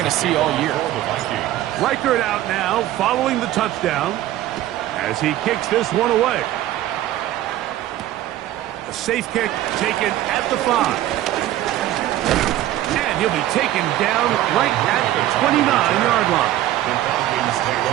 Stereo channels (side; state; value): left; quieter; 13.9 dB